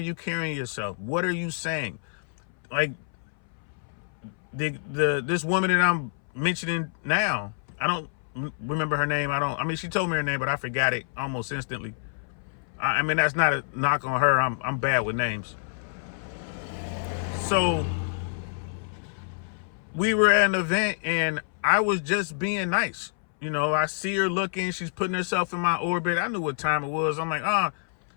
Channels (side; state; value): right; silent; 60 dB below the other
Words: carrying yourself? What are you saying? Like this woman that I'm mentioning now, I don't remember her name. She told me her name, but I forgot it almost instantly. I mean, that's not a knock on her. I'm bad with names. So we were at an event and I was just being nice. I see her looking, she's putting herself in my orbit. I knew what time it was. I'm like,